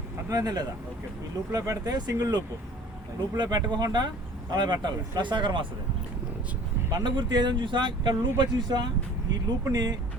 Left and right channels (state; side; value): normal; both; correlation 0.48